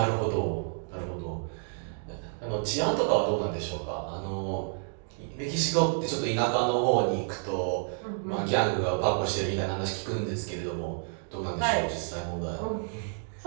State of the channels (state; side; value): silent; left; 58 dB below the other